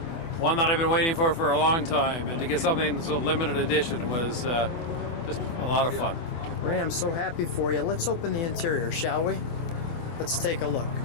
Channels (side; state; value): right; late; 24 ms